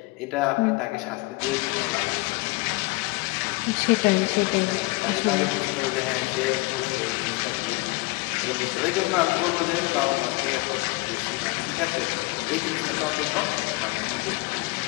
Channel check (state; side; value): quieter; right; 24.6 dB